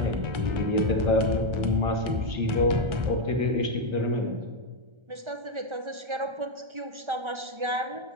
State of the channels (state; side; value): late; left; 1.3 ms